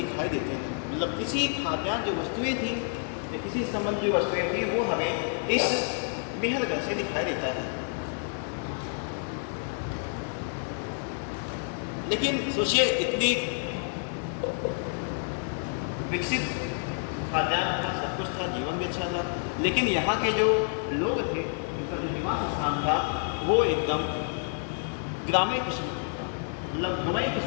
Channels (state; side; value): silent; right; 59 dB below the other